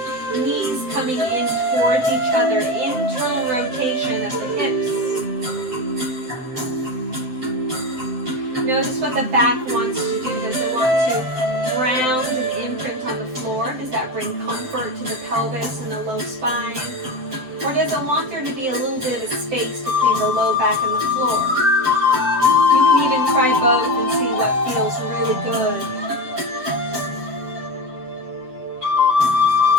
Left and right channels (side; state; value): left; late; 7.8 ms